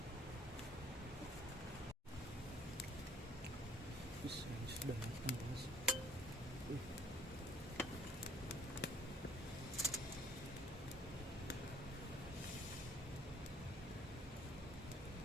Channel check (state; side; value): normal; both; correlation 0.56